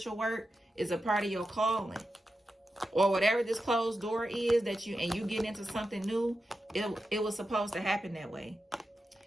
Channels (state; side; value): normal; both; correlation 0.90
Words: work is a part of your calling. Or whatever this closed door is that you get into something new, it was supposed to happen that way.